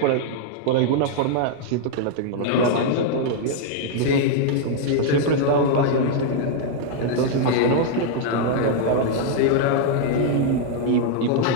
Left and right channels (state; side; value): different; both; correlation 0.00